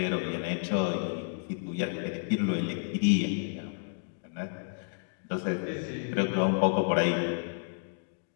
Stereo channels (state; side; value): silent; right; digital silence